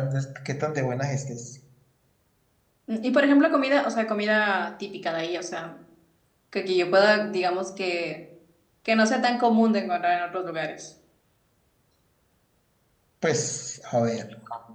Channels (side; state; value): both; identical; correlation 1.00